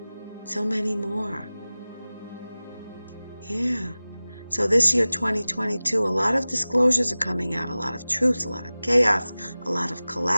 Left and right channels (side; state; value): both; inverted; correlation -0.98